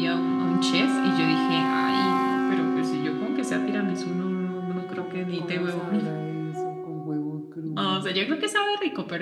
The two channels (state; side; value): identical; both; correlation 1.00